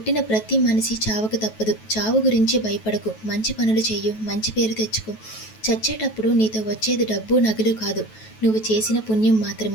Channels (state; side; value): late; right; 9.2 ms